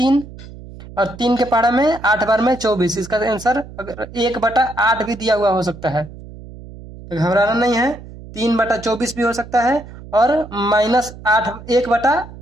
और 3 के पहाड़ा में 8 बार में 24। इसका आंसर अगर 1/8 भी दिया हुआ हो सकता है, तो घबराना नहीं है। 3/24 भी हो सकता है और -8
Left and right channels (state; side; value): noise; right; hum, 16 dB below the sound